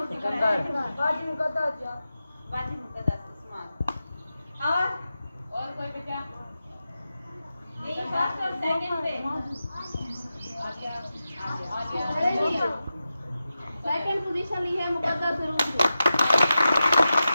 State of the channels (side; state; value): both; inverted; correlation -0.92